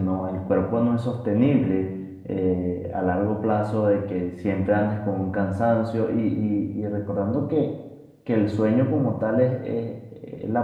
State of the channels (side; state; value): both; identical; correlation 1.00